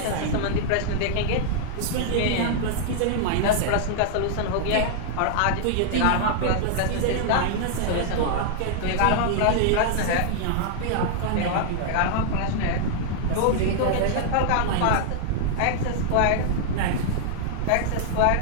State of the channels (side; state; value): both; different; correlation -0.01